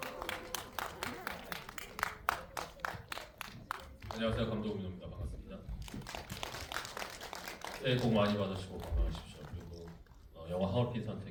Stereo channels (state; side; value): identical; both; correlation 1.00